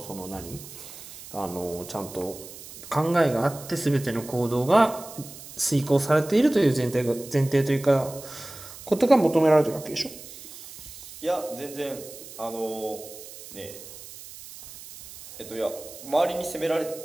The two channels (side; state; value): right; noise; hiss, 15 dB below the sound